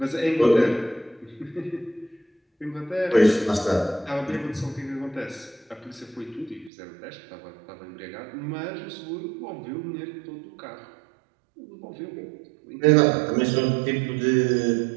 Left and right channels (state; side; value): drops out; left; at 6.7 s